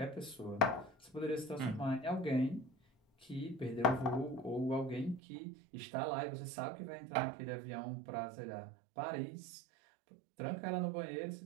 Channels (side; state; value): left; drops out; at 5.2 s